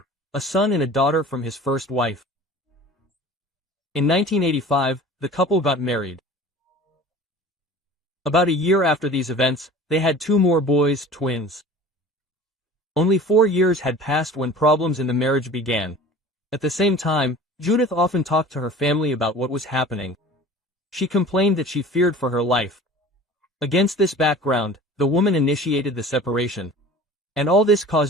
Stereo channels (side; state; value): both; normal; correlation 0.42